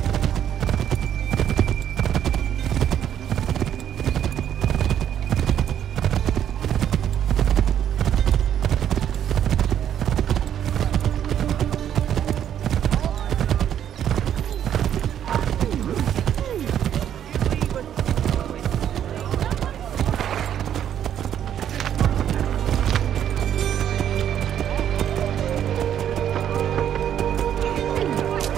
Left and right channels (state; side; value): quieter; left; 9.9 dB